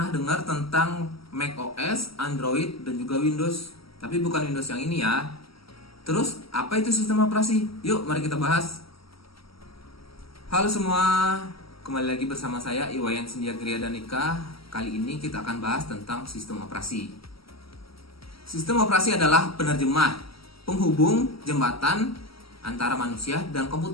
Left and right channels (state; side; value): late; right; 0.75 ms